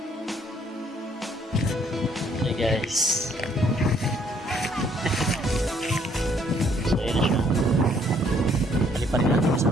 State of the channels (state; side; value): normal; both; correlation 0.65